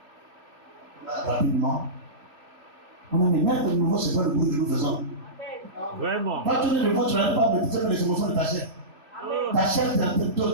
Rapidement. On a dit, mettre de nouveau, c'est pas le bruit que nous faisons. Vraiment. Quand tu es de nouveau, tu n'arrives pas à méditer les émotions de ta chair. Ta chair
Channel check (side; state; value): left; late; 2.8 ms